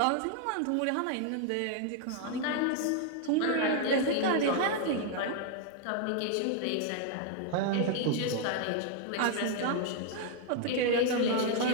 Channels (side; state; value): both; different; correlation 0.00